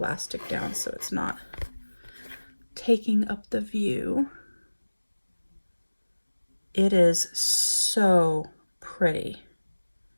down so it's not taking up the view. It is so pretty.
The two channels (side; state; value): both; inverted; correlation -1.00